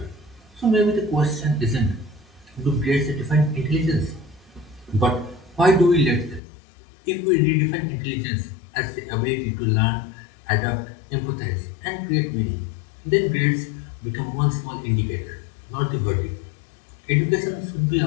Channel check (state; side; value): drops out; right; at 6.4 s